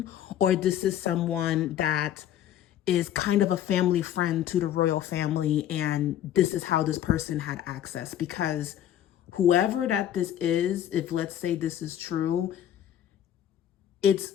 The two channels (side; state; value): right; quieter; 11.0 dB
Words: or this is someone that is kind of a family friend to the royal family, and this is how this person had access. Because whoever that this is, if let's say this is true, it's